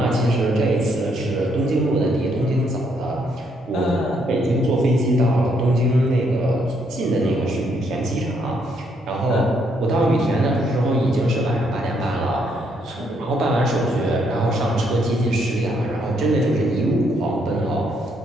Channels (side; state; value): both; normal; correlation 0.72